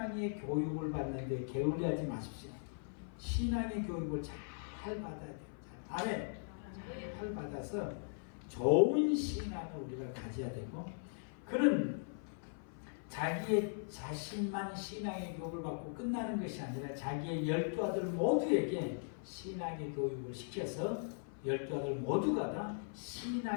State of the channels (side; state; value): right; silent; 52 dB below the other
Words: 교육을 받는데 게을리하지 마십시오. 신앙의 교육을 잘 받아야 돼요. 아멘. 잘 받아서 좋은 신앙을 우리가 가져야 되고 그는 자기의 자신만 신앙의 교육을 받고 끝나는 것이 아니라 자기의 12아들 모두에게 신앙의 교육을 시켜서 12아들 모두가 다